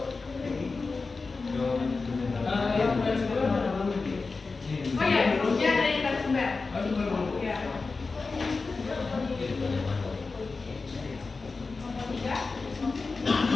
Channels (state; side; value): quieter; right; 4.1 dB